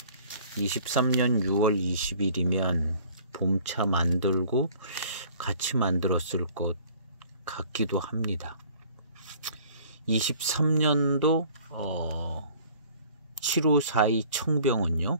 23년 6월 20일이면 봄차 만들고 같이 만들었을 것 같기도 합니다. 23년도 7542 청병은요,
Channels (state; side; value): inverted; both; correlation -0.52